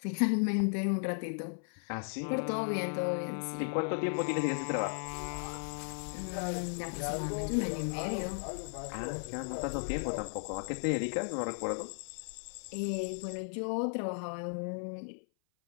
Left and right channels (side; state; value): right; silent; 54 dB below the other